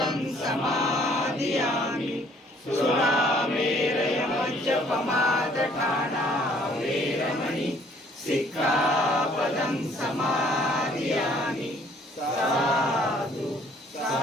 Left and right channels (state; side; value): normal; both; correlation 0.60